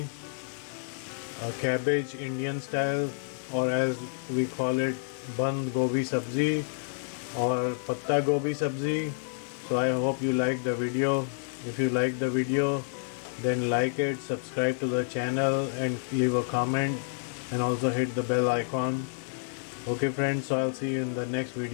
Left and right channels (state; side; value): silent; right; 58 dB below the other